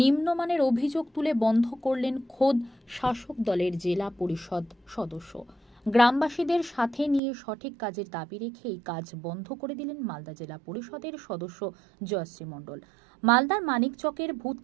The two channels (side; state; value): left; drops out; at 7.2 s